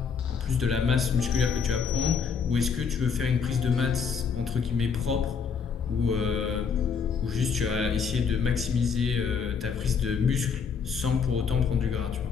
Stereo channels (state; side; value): quieter; right; 6.2 dB